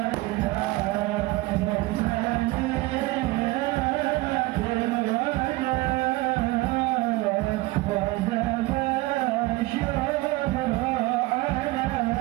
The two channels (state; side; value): quieter; left; 20.4 dB